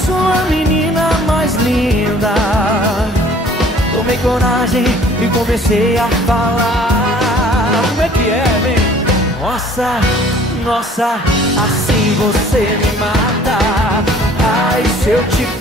a menina mais linda. Tomei coragem e comecei a falar. Como é que é, vem? Nossa, nossa, assim você me mata. Ai, se eu te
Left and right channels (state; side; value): normal; both; correlation 0.53